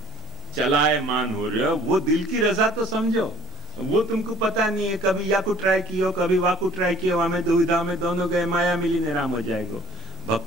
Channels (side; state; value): both; normal; correlation 0.53